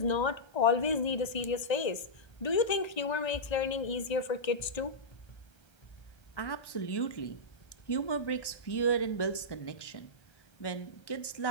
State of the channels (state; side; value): late; right; 1.3 ms